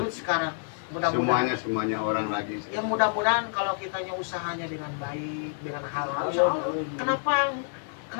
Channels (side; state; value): right; silent; 59 dB below the other